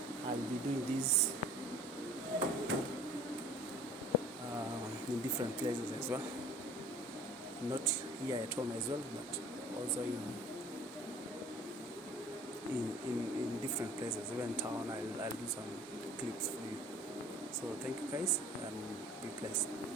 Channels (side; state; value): both; normal; correlation 0.48